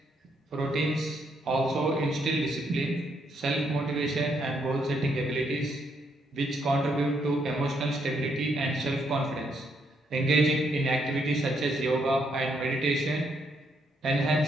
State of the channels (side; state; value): both; normal; correlation 0.75